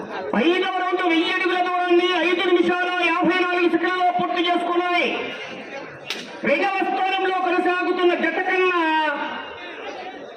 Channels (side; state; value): both; identical; correlation 1.00